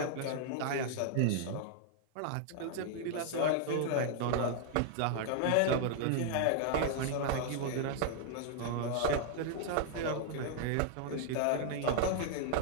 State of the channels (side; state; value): both; different; correlation 0.00